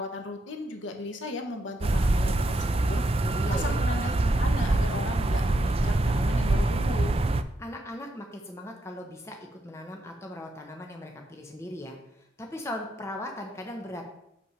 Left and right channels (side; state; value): both; normal; correlation 0.81